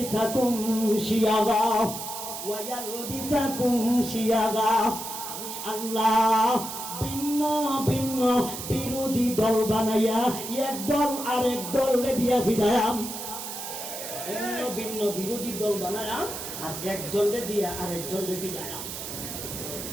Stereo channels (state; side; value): noise; right; hiss, 8 dB below the sound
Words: শিয়াগা, আমি আল্লাহ ভিন্ন ভিন্ন বিরোধী দল বানাইয়া এক দল আরেক দলে দিয়া ভিড়ায়াম। ভিন্ন ভিন্ন বিরোধী দল বানায়াম আর এক দলে দিয়া আরেক দলে ভিড়ায়াম।